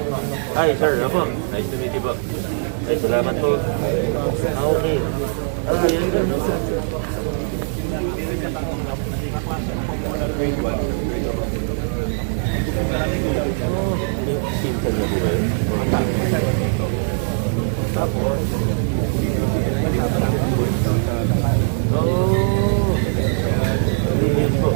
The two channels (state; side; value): silent; left; digital silence